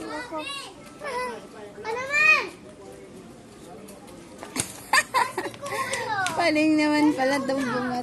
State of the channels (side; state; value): both; identical; correlation 1.00